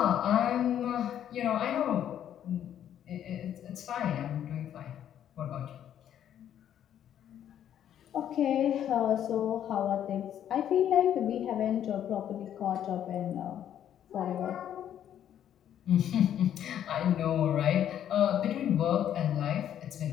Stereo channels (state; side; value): quieter; right; 10.2 dB